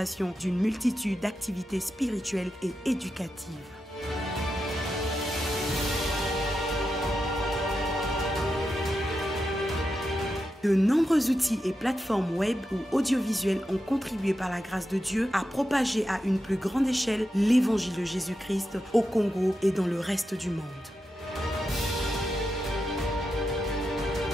d'une multitude d'activités spirituelles et éducatives. De nombreux outils et plateformes web ou audiovisuelles ont contribué par la grâce de Dieu à propager à une plus grande échelle l'évangile de Jésus-Christ au Congo et dans le reste du monde.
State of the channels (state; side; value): normal; both; correlation 0.88